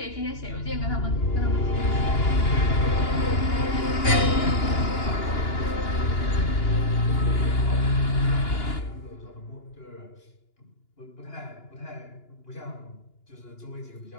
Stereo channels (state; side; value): late; right; 2.9 ms